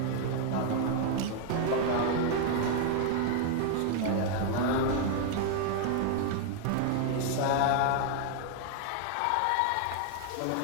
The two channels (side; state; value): both; different; correlation 0.00